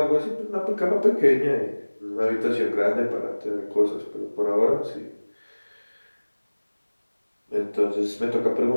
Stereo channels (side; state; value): both; inverted; correlation -1.00